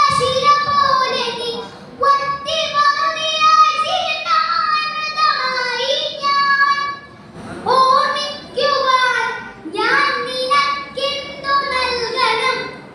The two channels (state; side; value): identical; both; correlation 1.00